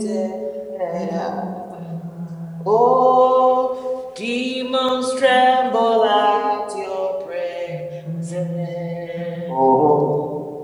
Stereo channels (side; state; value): both; identical; correlation 1.00